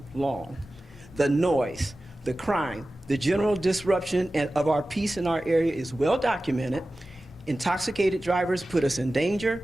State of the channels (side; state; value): both; normal; correlation 0.95